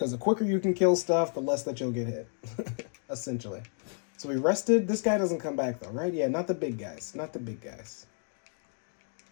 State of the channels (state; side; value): silent; right; 57 dB below the other